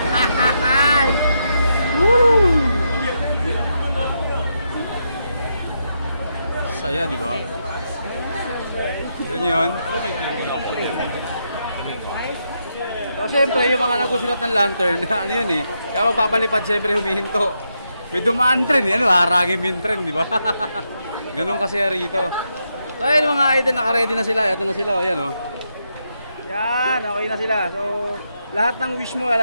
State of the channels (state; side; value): inverted; both; correlation -0.82